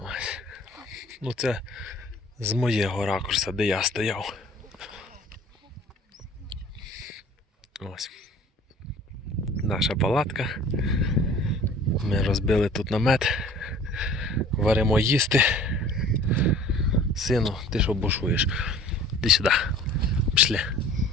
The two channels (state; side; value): normal; both; correlation 0.48